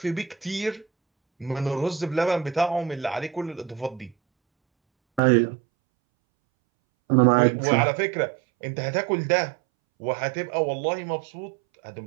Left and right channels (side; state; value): left; drops out; at 5.2 s